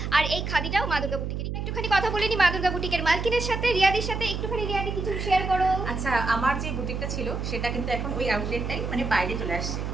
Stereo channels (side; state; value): right; noise; hum, 3 dB below the sound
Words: আর এই খাদিটাও মা দুর্গা বুটিকের। একটুখানি কথা বলে নি মা দুর্গা বুটিকের মালকিনের সাথে, রিয়াদির সাথে। একটুখানি রিয়াদি কিছু শেয়ার করো। আচ্ছা, আমার যে বুটিকটা ছিল সেটা কিন্তু এখন ওই আউটলেটটাই মানে বাইরে চলে আসছে,